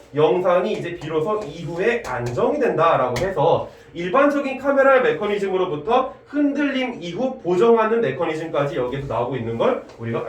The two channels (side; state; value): both; identical; correlation 1.00